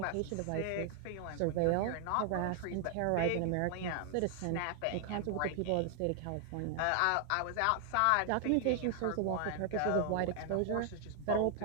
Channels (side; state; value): both; different; correlation 0.00